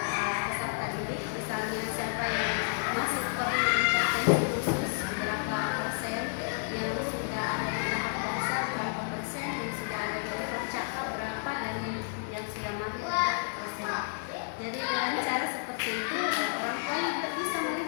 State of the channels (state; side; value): silent; right; 57 dB below the other